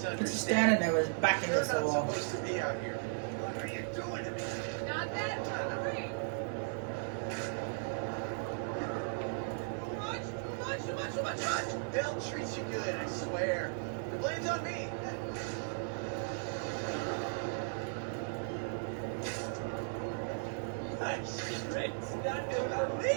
He's just standing there with his back You're against the not wall. supposed to be out here. What are you doing to me? Not that hungry. Too much. They'll treat you good, I swear. The blame's on me. Nice. It's not gonna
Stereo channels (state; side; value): silent; left; digital silence